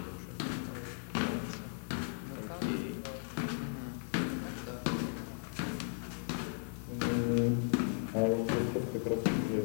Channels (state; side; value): silent; right; 54 dB below the other